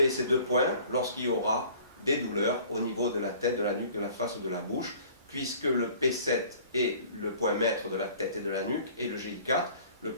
ces deux points lorsqu'il y aura des douleurs au niveau de la tête, de la nuque, de la face ou de la bouche, puisque le P7 est le point maître de la tête et de la nuque, et le GI4 le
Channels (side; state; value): both; inverted; correlation -0.50